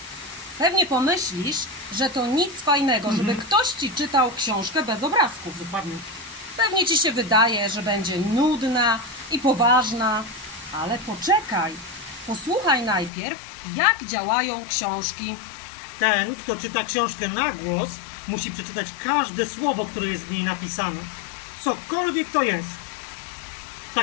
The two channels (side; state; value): right; drops out; at 13.1 s